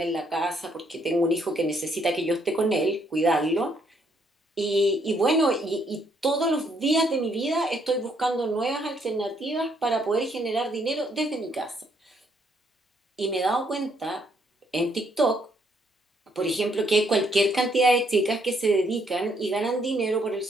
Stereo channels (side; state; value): both; normal; correlation 0.71